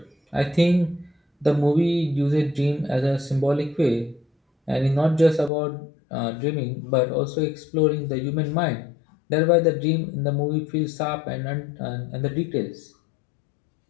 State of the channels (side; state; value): right; drops out; at 5.5 s